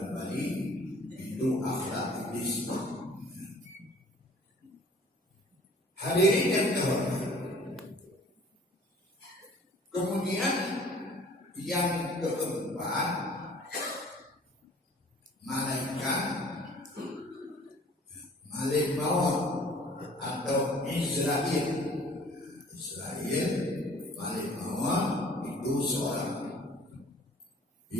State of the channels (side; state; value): both; normal; correlation 0.51